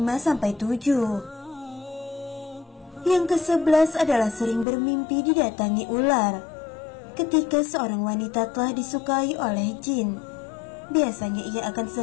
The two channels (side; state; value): right; drops out; at 4.7 s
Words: Yang ke-11 adalah sering bermimpi didatangi ular. Ketika seorang wanita telah disukai oleh jin, biasanya ia akan